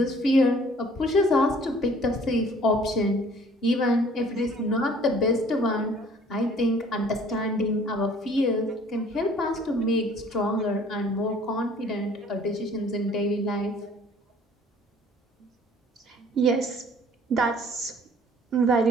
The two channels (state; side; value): normal; both; correlation 0.55